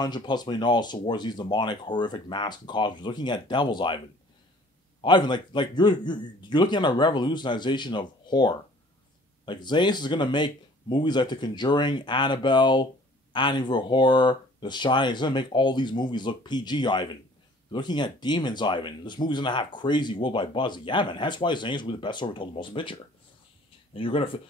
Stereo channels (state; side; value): normal; both; correlation 0.53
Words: million towards these demonic, horrific masks and costumes, looking at devils, Ivan. Ivan, like you're looking at a revolutionization of horror. Like, Zayas is gonna make movies like The Conjuring, Annabelle, Amityville Horror, The Shining. He's gonna make all these movies look PG, Ivan. You're looking at demons, Ivan. This movie's gonna have crazy worldwide buzz. Yeah, man. That's why Zayas will be the best story told in the motion picture. And you're gonna